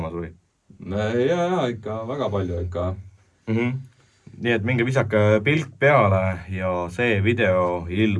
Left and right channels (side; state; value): both; identical; correlation 1.00